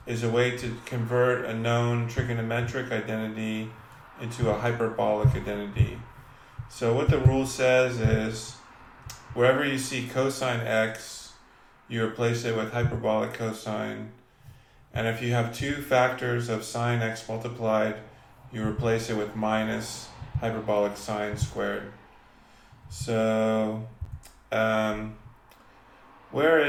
is a way to convert a known trigonometric identity into a hyperbolic identity. So what the rule says is, wherever you see cosine x, you replace it with hyperbolic cosine. And if you have two factors of sine x multiplied, you replace it with minus hyperbolic sine squared. So, where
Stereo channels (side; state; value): both; identical; correlation 1.00